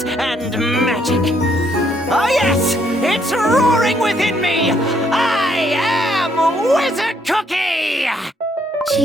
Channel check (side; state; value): both; normal; correlation 0.70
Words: and magic. Oh yes, it's roaring within me. I am Wizard Cookie!